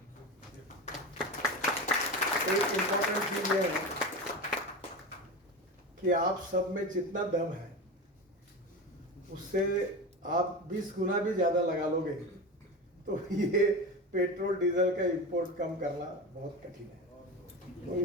एक इम्पोर्टेंट चीज ये है कि आप सब में जितना दम है उससे आप 20 गुना भी ज़्यादा लगा लोगे तो ये पेट्रोल डीजल का इंपोर्ट कम करना बहुत कठिन है। तो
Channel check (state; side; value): normal; both; correlation 0.25